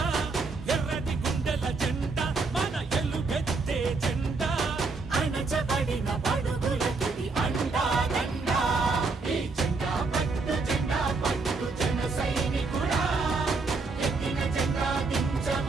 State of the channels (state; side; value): quieter; left; 4.0 dB